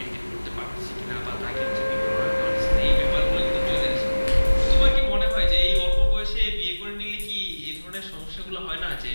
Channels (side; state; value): both; inverted; correlation -1.00